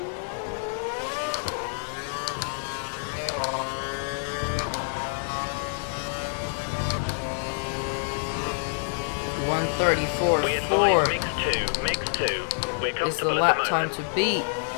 We advise mix 2. We're comfortable is the at lap the time moment. to beat.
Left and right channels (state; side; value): silent; right; digital silence